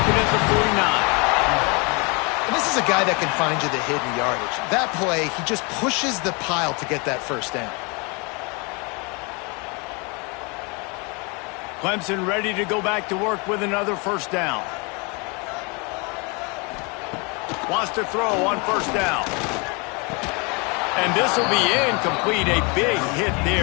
it at the 49. And this is a guy that can find you the hidden yardage. That play, he just pushes the pile to get that first down. Clemson ready to go back to work with another first down. Wants to throw on first down. And this will be incomplete. A big hit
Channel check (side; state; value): right; quieter; 30.8 dB